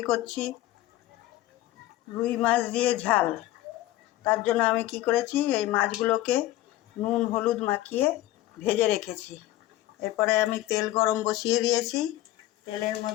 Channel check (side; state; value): right; quieter; 15.6 dB